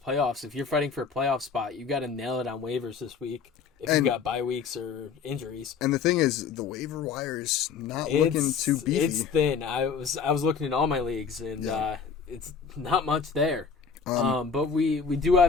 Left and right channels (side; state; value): right; quieter; 5.9 dB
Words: If you're fighting for a playoff spot, you got to nail it on waivers this week. If you've got bye weeks or injuries. And the thing is, the waiver wire is not looking too beefy. It's thin. I was looking in all my leagues, and it's not much there. But we do